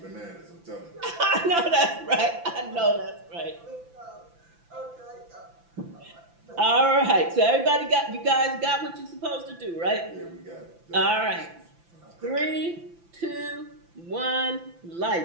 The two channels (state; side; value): late; left; 5.9 ms